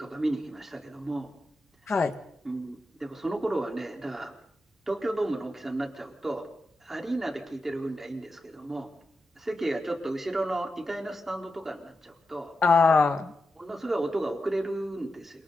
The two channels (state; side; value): normal; both; correlation 0.89